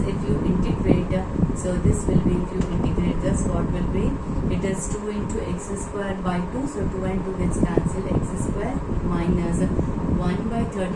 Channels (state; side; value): identical; both; correlation 1.00